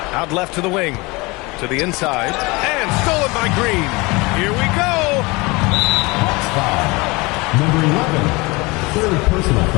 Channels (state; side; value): quieter; right; 24.6 dB